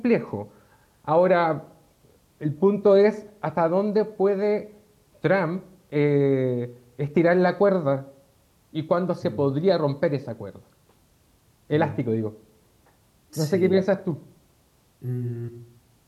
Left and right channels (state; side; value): identical; both; correlation 1.00